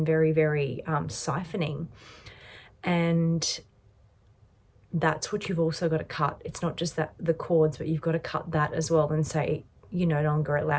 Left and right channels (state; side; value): identical; both; correlation 1.00